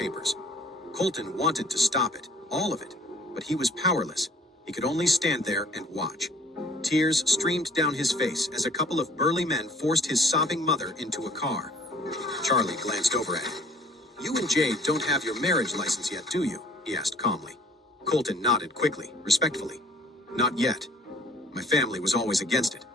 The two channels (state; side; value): normal; both; correlation 0.54